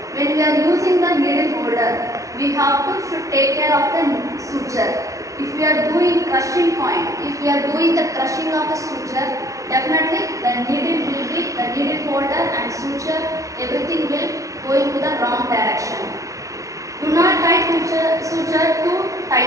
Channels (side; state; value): left; late; 0.16 ms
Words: When we are using the needle holder, we have to should take care of the suture. If we are doing crushing point, if we are doing the crushing of the suture, definitely the needle holder and suture, everything will go into the wrong direction. Do not tie suture too